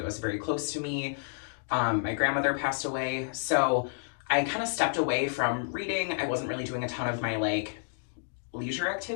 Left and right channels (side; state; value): right; silent; digital silence